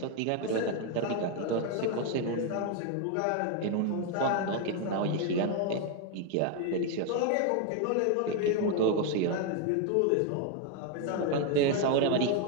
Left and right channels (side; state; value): both; different; correlation 0.01